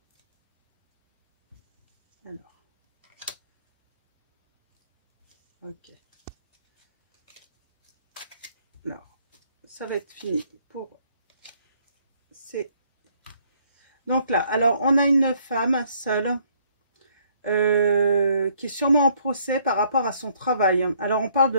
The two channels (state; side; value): inverted; both; correlation -0.66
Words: Alors, ok. Alors, ça va être fini pour ces... Donc là, alors on a une femme seule qui est sûrement en procès par rapport à son travail. Alors on parle